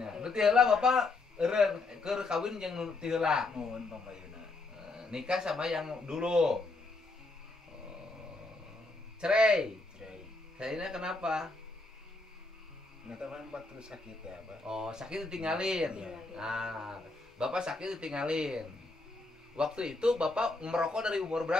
Berarti heula Bapak eureun keur kawin jeung nu ti heula. Nuhun Kang Payuna. Nikah sama yang dulu. Cerai. Cerai kenapa? Neta kan waktu sakit ya, Pak. Oh, sakit ditinggalin. Bapak sakit ditinggalin. Waktu itu Bapak merokok dari umur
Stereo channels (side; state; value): right; quieter; 3.3 dB